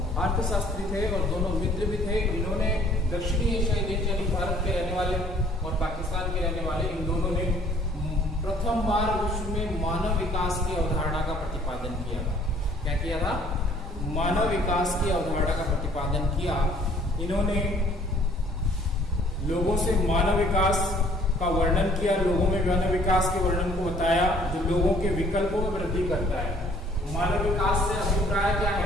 अर्थशास्त्री थे और दोनों मित्र भी थे। इन्होंने दक्षिणी एशियाई देश यानी भारत के रहने वाले और पाकिस्तान के रहने वाले, इन दोनों ने प्रथम बार विश्व में मानव विकास की अवधारणा का प्रतिपादन किया था। क्या किया था? मानव विकास की अवधारणा का प्रतिपादन किया। इन्होंने लोगों से मानव विकास का वर्णन किया, लोगों में मानव विकास के वर्णन को बताया जो लोगों के विकल्पों में वृद्धि करता है। मानव विकास से अभिप्राय क्या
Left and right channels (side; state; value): both; normal; correlation 0.58